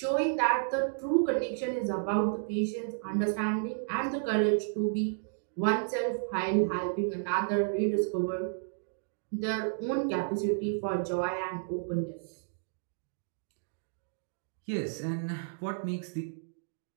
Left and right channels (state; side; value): silent; left; digital silence